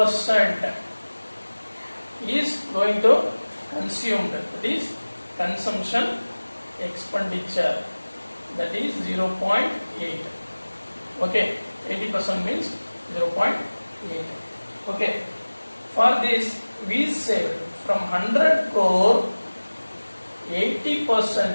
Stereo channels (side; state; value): both; inverted; correlation -1.00